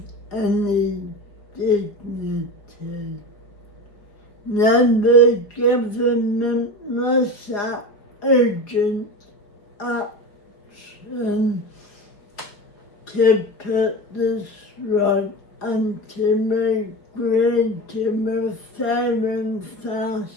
any dignity. Now the government must act urgent action to put this right and to agree to a fair and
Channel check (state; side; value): late; right; 4.7 ms